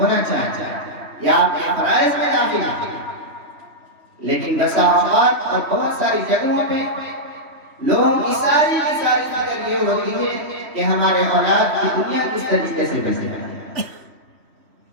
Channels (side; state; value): left; late; 3.1 ms